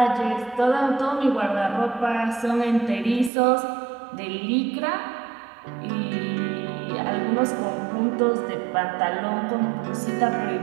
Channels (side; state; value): left; drops out; at 3.3 s